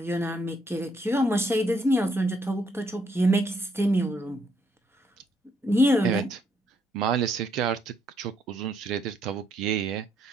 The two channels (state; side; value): normal; both; correlation 0.73